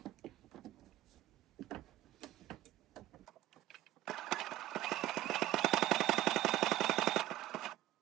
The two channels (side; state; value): left; quieter; 14.8 dB